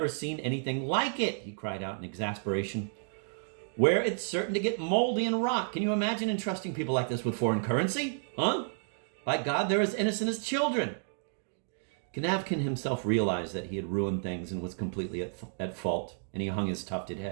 seen anything like it?" he cried out in exasperation. where it's certain to get moldy and rot. Can you imagine entrusting people like this with foreign currency? Huh? By God, they're as innocent as children. Kanavkin himself realized that he had ruined things and was completely at fault, and he hung his tufted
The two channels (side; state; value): left; silent; digital silence